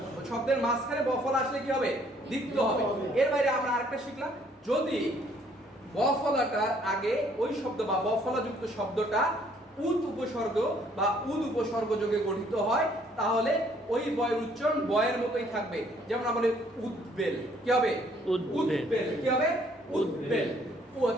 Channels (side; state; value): both; normal; correlation 0.63